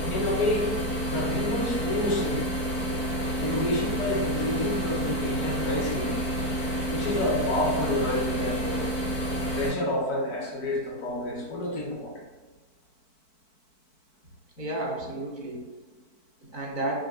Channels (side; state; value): right; late; 4.5 ms